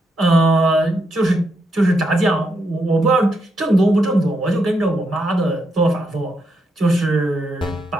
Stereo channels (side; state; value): both; normal; correlation 0.80